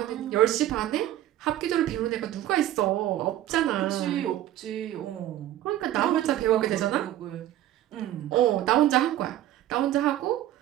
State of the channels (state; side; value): quieter; left; 13.1 dB